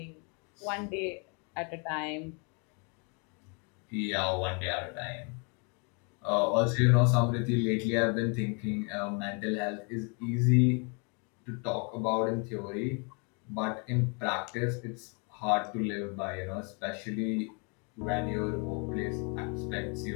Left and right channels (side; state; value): right; quieter; 35.4 dB